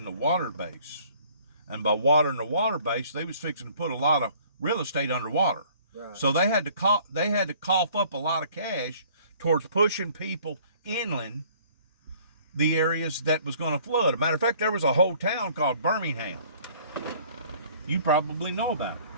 the water base. And by watering the water base, they was fixing to put a lot of real estate underwater. Right. So they had to cough up a lot of cash towards pushing people inland the areas that was going to flood. As a matter of fact, there was a whole town called Birmingham. You probably know about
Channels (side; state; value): both; inverted; correlation -0.55